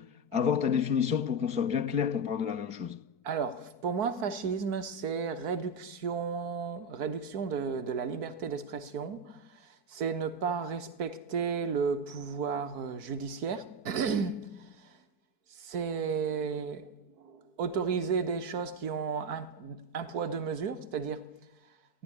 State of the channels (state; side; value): late; left; 4.6 ms